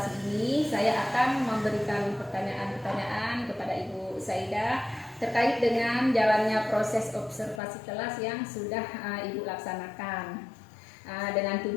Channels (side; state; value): right; drops out; at 7.6 s